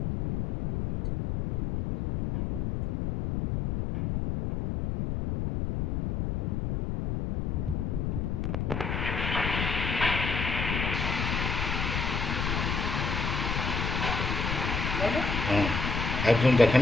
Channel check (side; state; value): left; noise; rumble, 1 dB below the sound